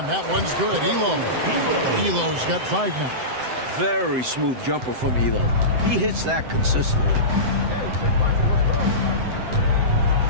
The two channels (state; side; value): late; left; 7.8 ms